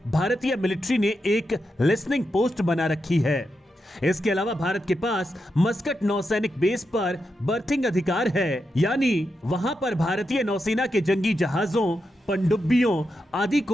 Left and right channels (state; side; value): normal; both; correlation 0.86